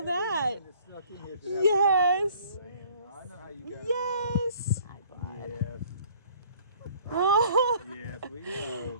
that. Yes. I know how you guys Yes. Yes. Oh. Yes, we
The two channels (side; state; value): both; inverted; correlation -0.55